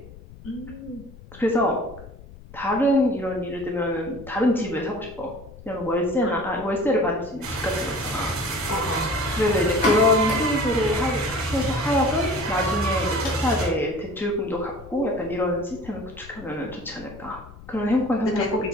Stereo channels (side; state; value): left; noise; rumble, 18 dB below the sound